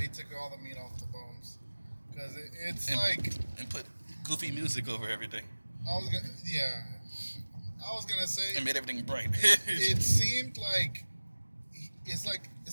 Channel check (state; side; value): inverted; both; correlation -1.00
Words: took all the meat off the bones because it's and put goofy music over everything. I was gonna say and made everything bright. It seemed like it's